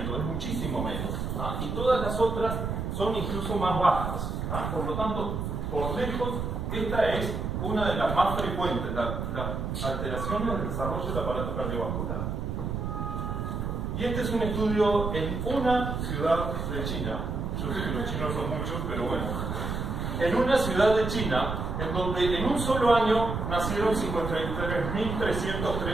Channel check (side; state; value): right; noise; rumble, 3 dB below the sound